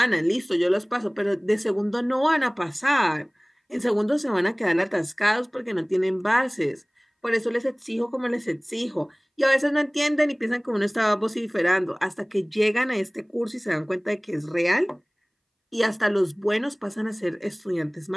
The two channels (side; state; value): both; identical; correlation 1.00